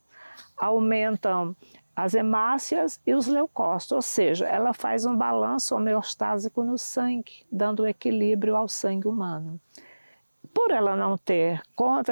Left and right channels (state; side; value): inverted; both; correlation -1.00